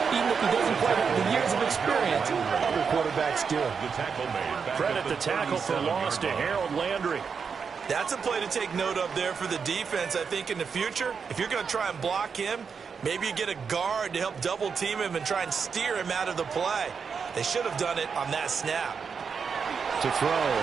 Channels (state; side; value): quieter; left; 6.0 dB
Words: even if he doesn't quite have the years of experience other quarterbacks do. Credit the tackle for loss to Harold Landry. That's a play to take note of there for the defense. I think in the future, if you're going to try and block him, maybe you get a guard to help double team him and try and steer him out of the play. They should have done it on that snap. To throw,